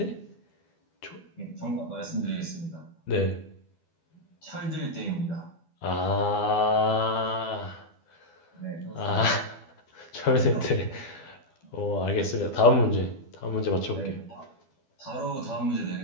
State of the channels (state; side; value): late; right; 12 ms